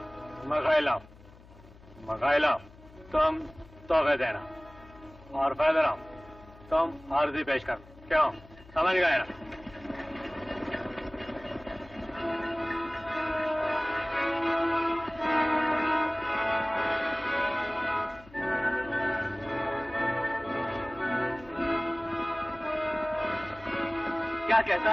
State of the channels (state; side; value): noise; left; hum, 22 dB below the sound